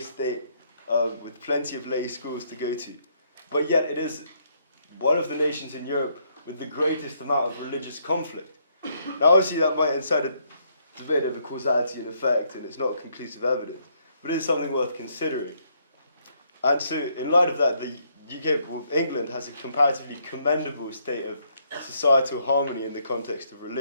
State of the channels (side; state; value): both; inverted; correlation -0.72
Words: with plenty of lay schools to go to. But yet it is one of the nations in Europe with the greatest amount of religious conflict. Now, obviously, that might incite a debate over causality and effect, and it's not conclusive evidence, but it is something worth considering. And so, in light of that, the UK, well, England, has a comparatively commendable state of societal harmony in the context of